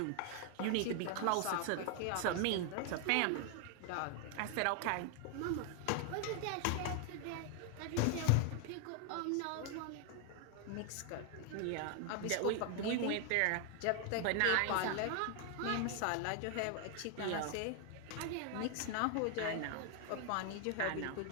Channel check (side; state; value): both; different; correlation 0.00